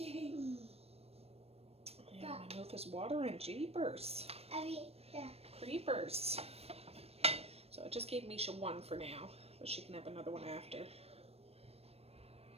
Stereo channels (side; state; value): left; late; 0.29 ms